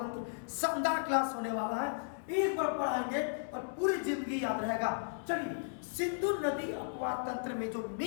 शानदार क्लास होने वाला है, एक बार पढ़ाएंगे और पूरी जिंदगी याद रहेगा। चलिए, सिंधु नदी अपवाह तंत्र में जो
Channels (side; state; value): right; silent; 54 dB below the other